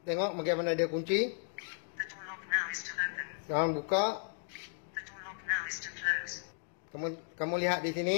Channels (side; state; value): right; silent; 55 dB below the other